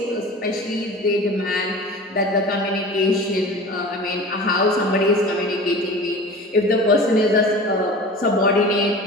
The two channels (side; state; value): both; normal; correlation 0.37